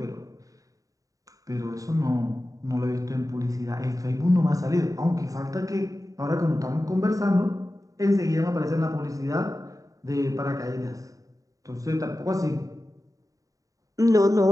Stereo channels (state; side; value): late; left; 0.16 ms